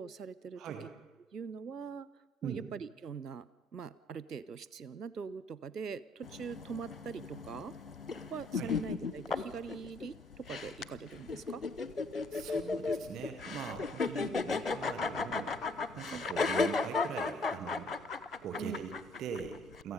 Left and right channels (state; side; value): normal; both; correlation 0.63